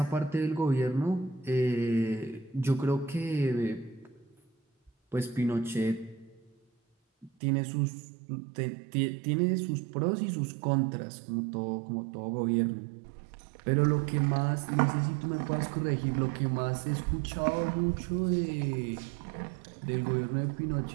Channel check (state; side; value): drops out; left; at 7.3 s